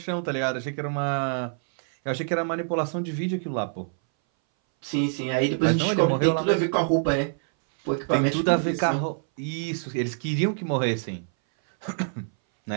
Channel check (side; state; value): left; silent; 59 dB below the other